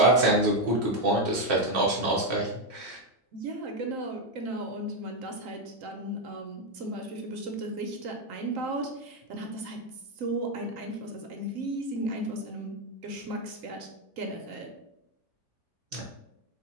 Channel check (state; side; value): normal; both; correlation 0.05